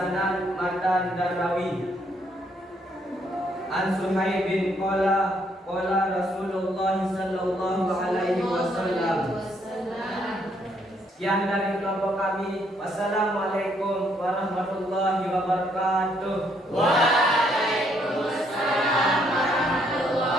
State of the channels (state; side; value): normal; both; correlation 0.70